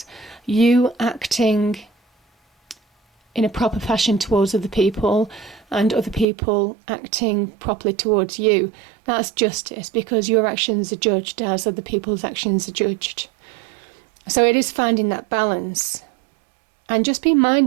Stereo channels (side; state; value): left; drops out; at 6.2 s